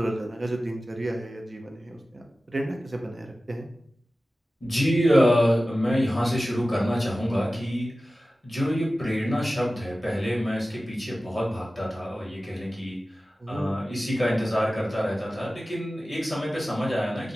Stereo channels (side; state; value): both; normal; correlation 0.96